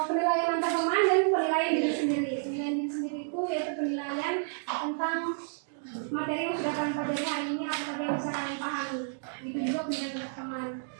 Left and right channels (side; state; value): left; silent; digital silence